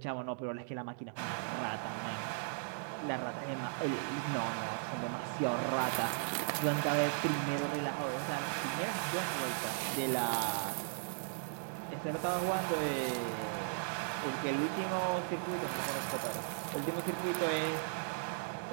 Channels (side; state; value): left; silent; 53 dB below the other